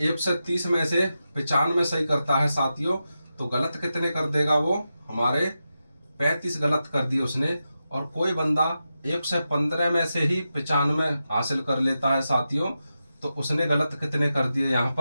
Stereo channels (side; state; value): both; inverted; correlation -0.90